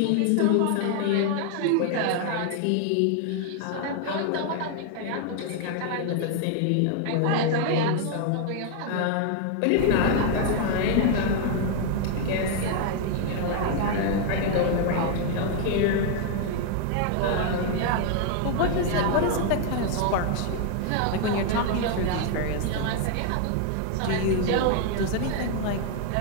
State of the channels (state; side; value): different; both; correlation 0.00